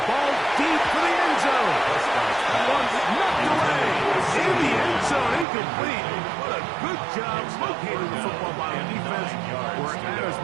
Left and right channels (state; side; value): drops out; left; at 5.5 s